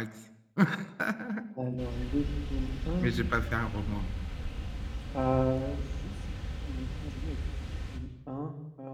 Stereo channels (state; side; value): identical; both; correlation 1.00